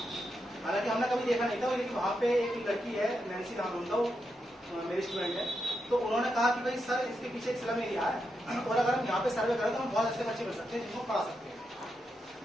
हालांकि हमने कभी देखा नहीं था, लेकिन वहाँ पे एक लड़की है, नैन्सी नाम उनका, वो मेरी स्टूडेंट है। तो उन्होंने कहा कि भाई सर इसके पीछे एक स्लम एरिया है और अगर हम यहाँ पे सर्वे करें तो हम बहुत अच्छे बच्चे मिल सकते हैं जिनको पढ़ा सकते हैं।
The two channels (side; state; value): both; normal; correlation 0.84